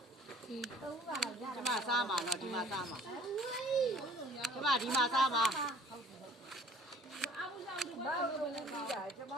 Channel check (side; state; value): both; normal; correlation 0.52